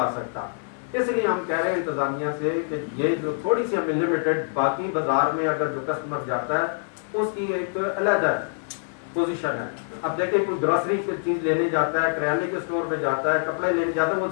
سکتا. اس لیے ہم کہہ رہے ہیں انتظامیہ سے کہ یہ جو تھوڑی سی ہمیں لمیٹڈ, باقی بازار میں اگر جو کسٹمر جاتا ہے اس کی ایک علیحدہ پوزیشن ہے. اب دیکھیں کوئی گروسری کی چیز لینے جاتا ہے, کریانے کے اسٹور پہ جاتا ہے, کپڑے لینے جاتا ہے, وہ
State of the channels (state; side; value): silent; right; digital silence